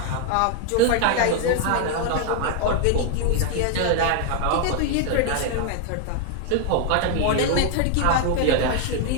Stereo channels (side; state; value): both; different; correlation 0.00